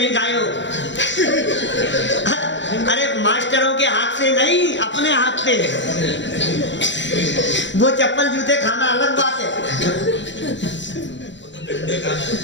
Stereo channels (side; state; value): right; late; 0.53 ms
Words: खाए हो? अरे मास्टरों के हाथ से नहीं, अपने हाथ से। वो चप्पल जूते खाना अलग बात है,